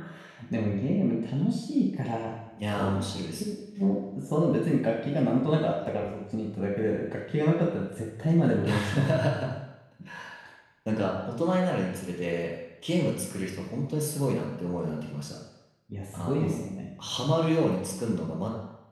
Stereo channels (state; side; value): identical; both; correlation 1.00